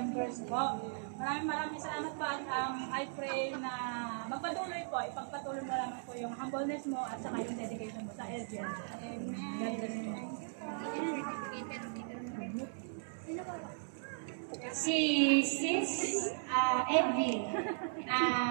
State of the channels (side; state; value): left; silent; digital silence